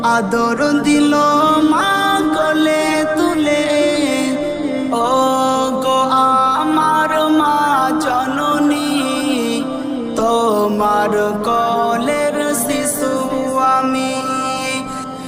আদর দিল মা কোলে তুলে। ও গো আমার মা জননী, তোমার কোলের শিশু আমি।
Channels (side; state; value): both; identical; correlation 1.00